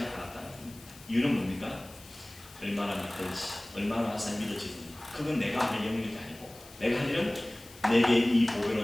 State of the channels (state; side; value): noise; left; hiss, 20 dB below the sound